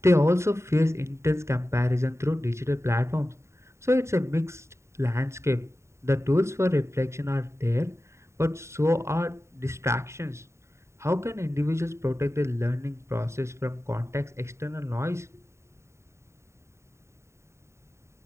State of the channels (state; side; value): late; left; 0.13 ms